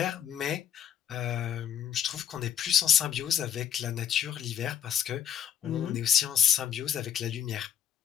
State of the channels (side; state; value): right; quieter; 9.3 dB